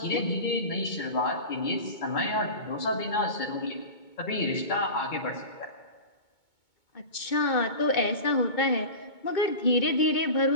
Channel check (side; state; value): right; late; 2.2 ms